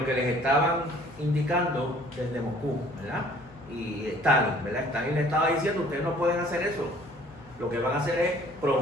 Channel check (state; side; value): noise; left; hum, 24 dB below the sound